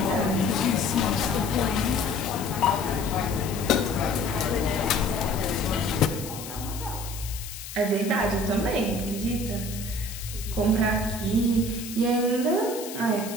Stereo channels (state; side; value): noise; left; hiss, 11 dB below the sound